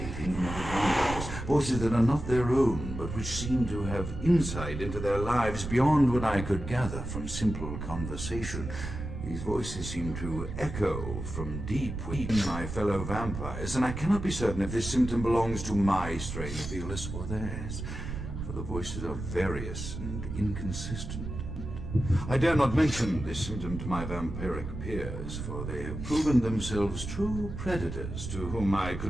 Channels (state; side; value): noise; right; rumble, 7 dB below the sound